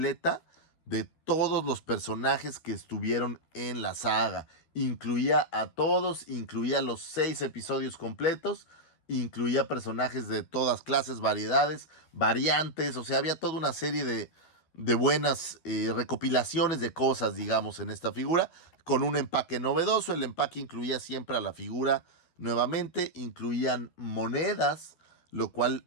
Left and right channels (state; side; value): late; right; 12 ms